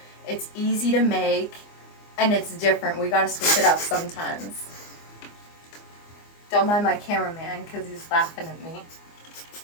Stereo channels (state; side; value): late; right; 24 ms